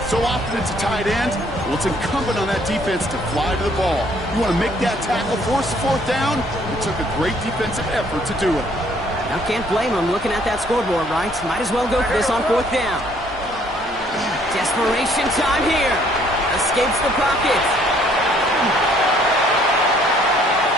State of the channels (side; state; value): both; normal; correlation 0.63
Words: so often it's a tight end, well, it's incumbent on that defense to fly to the ball. You want to make that tackle, force the 4th down. It took a great defensive effort to do it. Now can't blame him looking at that scoreboard, right? Might as well go for this on 4th down. Desperation time here. Escapes the pocket.